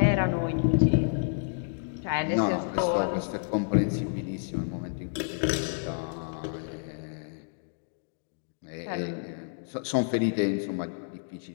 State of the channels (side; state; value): right; silent; digital silence